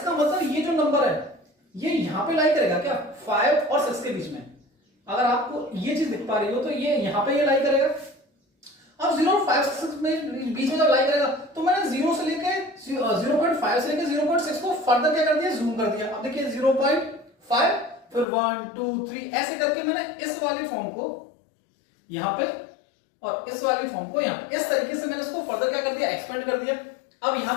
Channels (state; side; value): drops out; right; at 18.2 s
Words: मतलब ये जो नंबर है ये यहां पे लाई करेगा क्या 5 और 6 के बीच में। अगर आपको ये चीज दिख पा रही हो तो ये यहां पे ये लाई करेगा। अब 0 और 5 6 में बीच में जब लाई करेगा तो मैंने 0 से लेके 0.5 से लेके 0.6 को फर्दर क्या कर दिया, जूम कर दिया। अब देखिए 0.5 फिर 1 2 3 ऐसे करके मैंने इस वाले फॉर्म को यहां पे और इस वाली फॉर्म को यहां, इस तरीके से मैंने इसको फर्दर क्या कर दिया, एक्सपेंड कर दिया। अब यहां